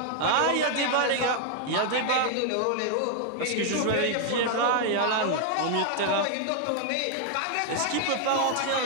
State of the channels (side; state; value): both; different; correlation 0.00